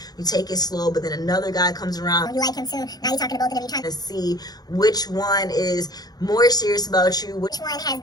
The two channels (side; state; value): right; late; 0.19 ms